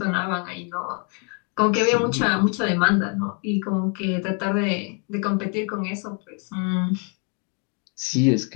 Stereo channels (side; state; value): right; quieter; 36.2 dB